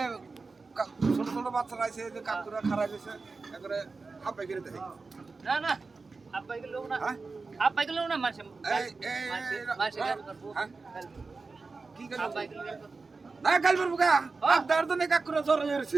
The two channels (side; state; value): left; quieter; 4.1 dB